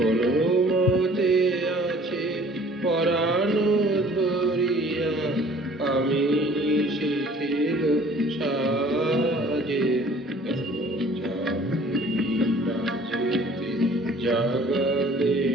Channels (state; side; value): normal; both; correlation 0.52